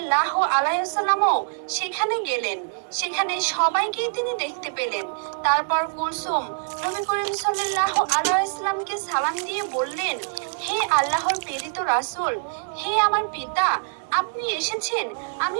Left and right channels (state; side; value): silent; left; digital silence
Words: আলাইহি ওয়াসাল্লামও সেখানে গেলেন। সেখানে সবাইকেই তিনি দেখতে পেলেন। তারপর কুলসুম নবী করিম সাল্লাল্লাহু আলাইহি ওয়াসাল্লামকে সালাম দিয়ে বললেন, হে আল্লাহর প্রেরিত রাসূল, হে আমার পিতা, আপনি এসেছেন, আমি